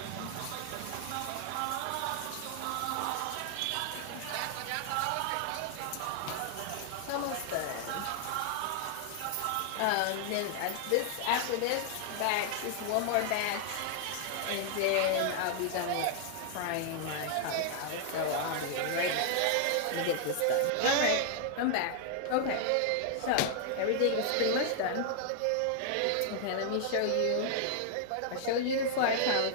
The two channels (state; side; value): different; both; correlation 0.00